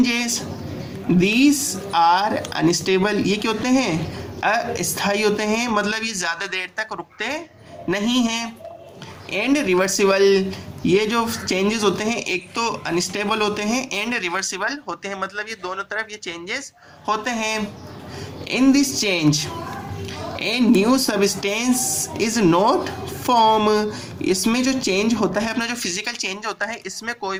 These are unstable. ये क्या होते हैं? अस्थायी होते हैं, मतलब ये ज़्यादा देर तक रुकते नहीं हैं। And reversible. ये जो चेंजेस होते हैं एक तो अनस्टेबल होते हैं एंड रिवर्सिबल होते हैं, मतलब ये दोनों तरफ ये चेंजेस होते हैं। In this change A new substance is not form. इसमें जो चेंज होता है, अपना जो फिजिकल चेंज होता है, इसमें कोई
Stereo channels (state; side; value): identical; both; correlation 1.00